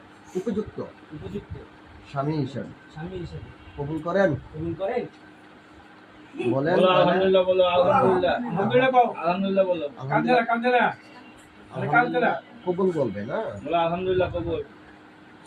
উপযুক্ত স্বামী হিসাবে কবুল করেন? বলেন। আলহামদুলিল্লাহ বলো। আলহামদুলিল্লাহ। আলহামদুলিল্লাহ বলো। কবুল বলবে না? বলো আলহামদুলিল্লাহ কবুল।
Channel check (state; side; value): identical; both; correlation 1.00